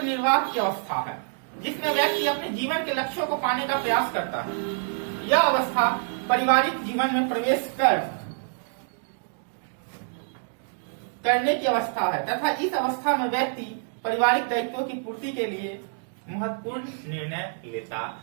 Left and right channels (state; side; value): silent; left; digital silence